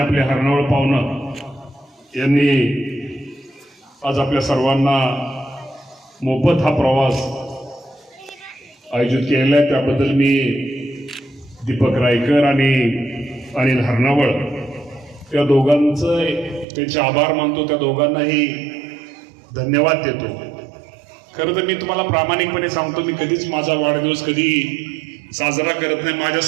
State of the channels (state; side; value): drops out; left; at 16.7 s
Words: आपले हरणावळ पाहुणं यांनी आज आपल्या सर्वांना मोफत हा प्रवास आयोजित केलेला आहे. त्याबद्दल मी दीपक रायकर आणि अनिल हरणावळ या दोघांचं त्यांचे आभार मानतो. त्या दोघांनाही धन्यवाद देतो. खरं तर मी तुम्हाला प्रामाणिकपणे सांगतो, मी कधीच माझा वाढदिवस कधी साजरा करत नाही.